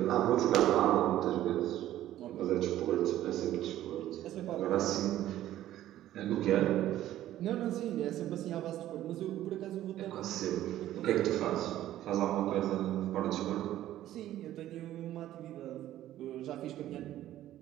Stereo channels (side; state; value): left; quieter; 13.3 dB